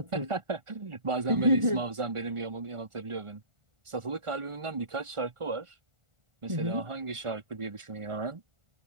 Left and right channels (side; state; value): left; late; 1.4 ms